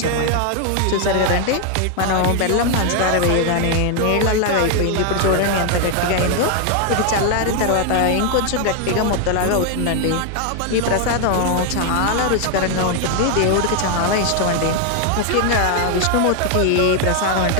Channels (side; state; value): both; different; correlation 0.00